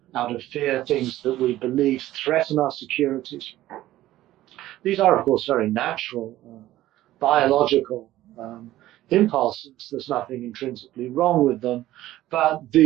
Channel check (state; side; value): quieter; left; 14.9 dB